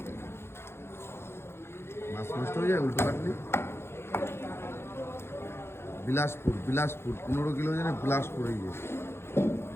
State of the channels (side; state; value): right; late; 0.12 ms